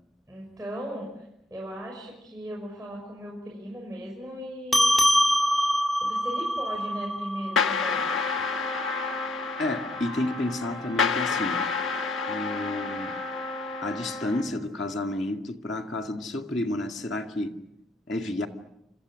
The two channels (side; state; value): both; normal; correlation 0.72